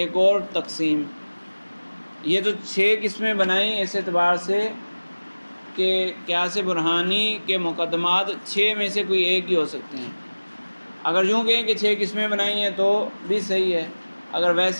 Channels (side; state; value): both; inverted; correlation -1.00